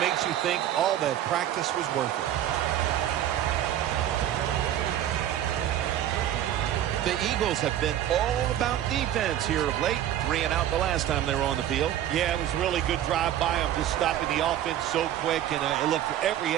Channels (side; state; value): left; quieter; 11.7 dB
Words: you think all that practice was worth it. The Eagles have been all about defense here of late. 3 and out the last time they were on the field. Yeah, it was a really good drive by them, just stopping the offense so quick, and it looked every